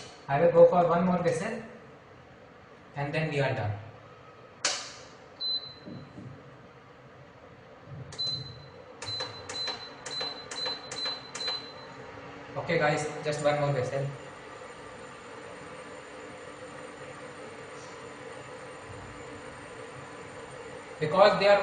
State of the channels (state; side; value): identical; both; correlation 1.00